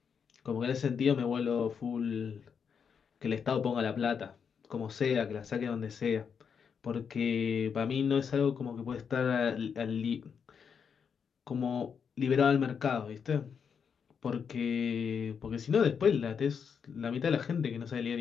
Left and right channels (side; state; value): right; quieter; 6.7 dB